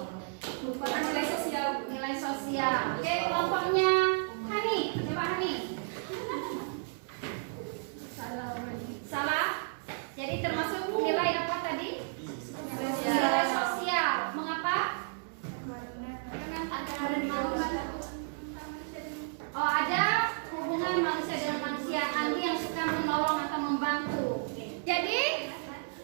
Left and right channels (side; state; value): left; silent; digital silence